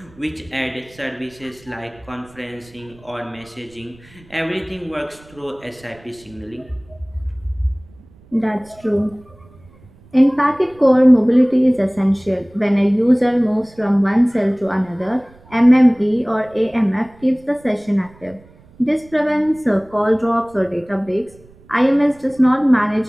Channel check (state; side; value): noise; right; rumble, 26 dB below the sound